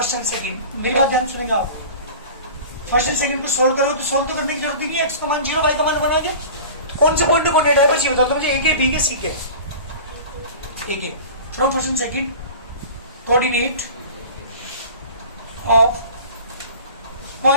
एंड सेकंड, मेरी बात ध्यान सुनेंगे आप। फर्स्ट एंड सेकंड को सोल्व करो तो सोल्व तो करने की जरूरत नहीं है। एक्स का मान 0, वाई का मान 1 आ गया। कौन से पॉइंट को कोऑर्डिनेट है बस ये बता दो मुझे। एक है, बी के, सी के। एक है from first and second coordinate of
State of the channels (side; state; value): both; inverted; correlation -0.38